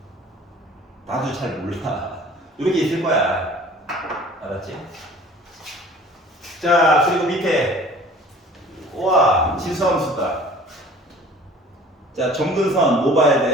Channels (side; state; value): both; normal; correlation 0.47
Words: 나도 잘 몰라. 이렇게 있을 거야. 알았지? 자, 그리고 밑에 우와, 진수함수다. 자, 점근선 뭐 봐야